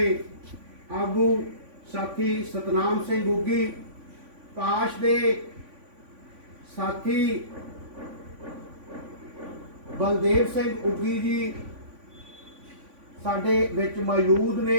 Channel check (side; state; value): left; late; 3.5 ms